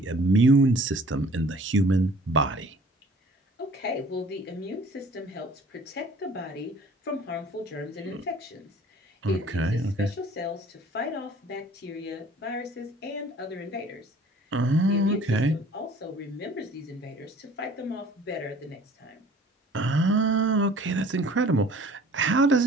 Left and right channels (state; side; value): normal; both; correlation 0.51